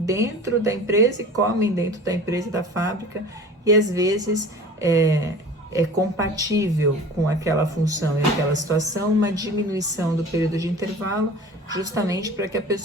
da empresa e comem dentro da empresa e da fábrica, e às vezes é compatível com aquela função e aquela situação uma diminuição do período de intervalo, justamente para que a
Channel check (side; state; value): both; normal; correlation 0.40